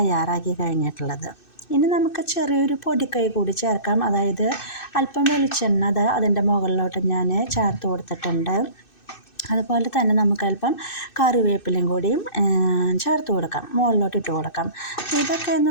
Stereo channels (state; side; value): late; right; 2.6 ms